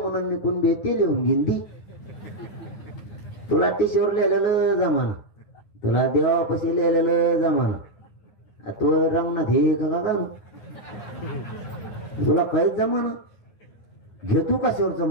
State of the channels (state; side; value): late; right; 9.4 ms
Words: मी कुणबी ते लिहून घेईन ती. तुला टीशीवर लिहिलेलं जमाना, तुला देवापाशी लिहिलेलं जमाना, तो रंगनाथ हे का तुला काहीच जमाना. घेतो कशावरचा